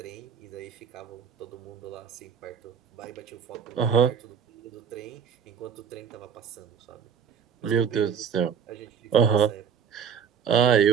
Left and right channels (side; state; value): left; quieter; 7.4 dB